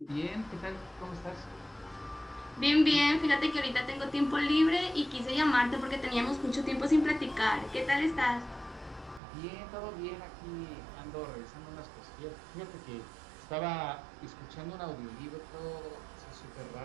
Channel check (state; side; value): drops out; left; at 9.2 s